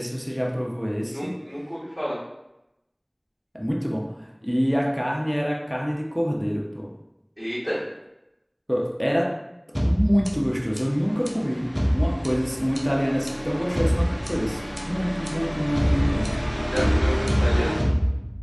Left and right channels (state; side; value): identical; both; correlation 1.00